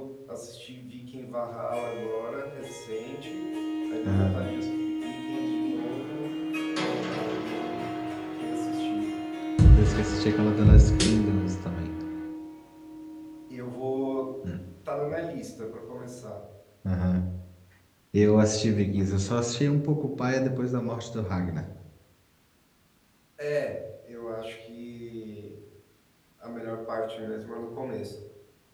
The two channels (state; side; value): identical; both; correlation 1.00